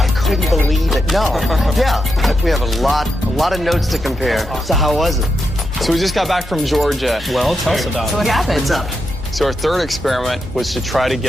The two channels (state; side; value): normal; both; correlation 0.85